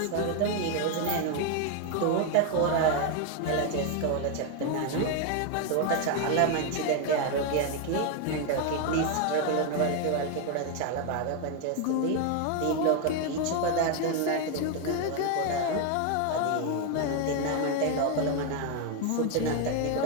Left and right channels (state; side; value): different; both; correlation 0.01